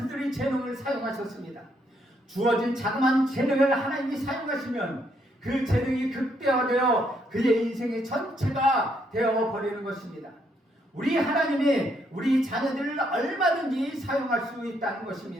재능을 사용하셨습니다. 주어진 자그마한 재능을 하나님이 사용하시면 그 재능이 극대화되어 그의 인생의 전체가 되어버리는 것입니다. 우리 하나님이 우리 자녀들을 얼마든지 사용할 수 있다는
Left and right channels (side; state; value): both; normal; correlation 0.73